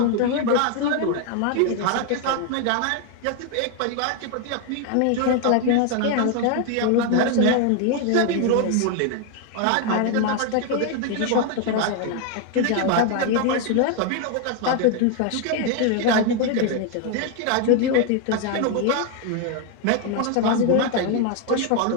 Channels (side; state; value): both; different; correlation 0.01